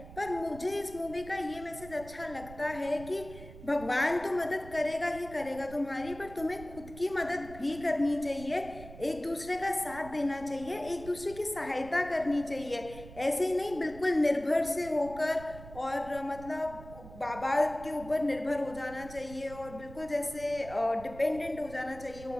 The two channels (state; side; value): noise; right; rumble, 15 dB below the sound